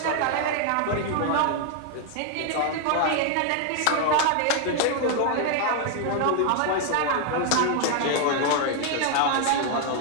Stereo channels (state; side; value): different; both; correlation 0.00